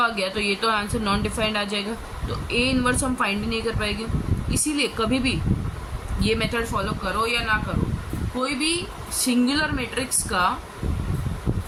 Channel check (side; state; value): both; identical; correlation 1.00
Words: गया तो ये तो आंसर नॉन डिफाइंड आ जाएगा, तो ए इनवर्स हम फाइंड ही नहीं कर पाएंगे। इसीलिए कभी भी ये मेथड फॉलो करो या ना करो, कोई भी सिंगुलर मैट्रिक्स का